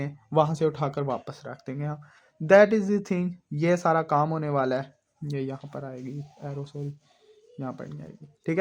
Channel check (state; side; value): identical; both; correlation 1.00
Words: वहाँ से उठाकर वापस रख देंगे हम। दैट इज़ द थिंग, ये सारा काम होने वाला है। ये यहाँ पर आएगी एरो, सॉरी यहाँ पर नहीं आएगी। ठीक